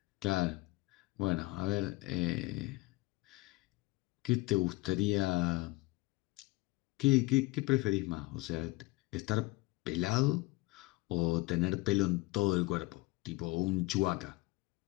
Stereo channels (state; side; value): quieter; right; 22.4 dB